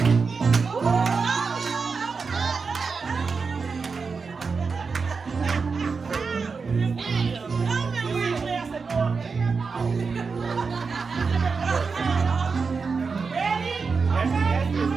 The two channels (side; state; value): left; quieter; 4.9 dB